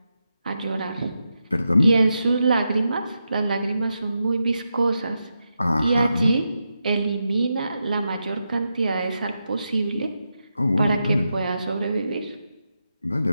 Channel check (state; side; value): inverted; both; correlation -0.87